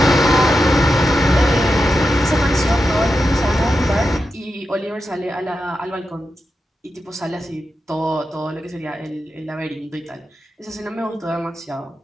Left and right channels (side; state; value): both; normal; correlation 0.89